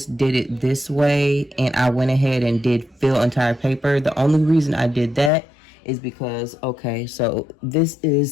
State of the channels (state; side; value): drops out; right; at 5.3 s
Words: did it this way, and I went ahead and did fill entire paper. The only reason I did that is because, okay, so this